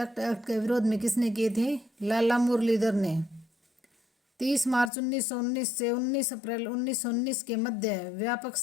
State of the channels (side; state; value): right; drops out; at 4.9 s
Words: एक्ट के विरोध में किसने किए थे? लाला मुरलीधर ने। 30 मार्च 1919 से 19 अप्रैल 1919 के मध्य व्यापक